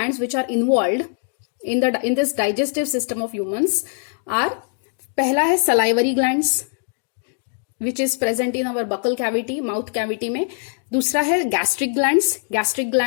which are involved in this digestive system of humans are, पहला है salivary glands which is present in our buccal cavity, mouth cavity में. दूसरा है gastric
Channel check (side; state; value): right; silent; 56 dB below the other